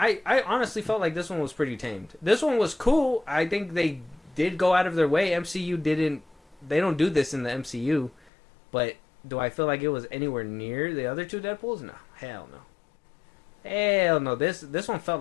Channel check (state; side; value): drops out; right; at 8.3 s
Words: honestly felt like this one was pretty tamed. This one was cool. I think they did go out of their way. MCU didn't. They don't do this in the MCU, but do I feel like it was anywhere near the other two Deadpools? No, hell no, hell no. This one felt